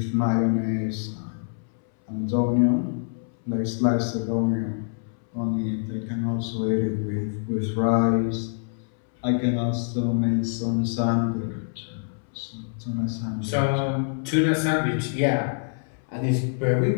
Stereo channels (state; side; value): silent; right; 61 dB below the other